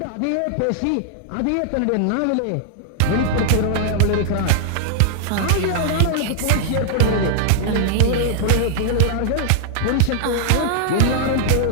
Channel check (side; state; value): both; different; correlation -0.01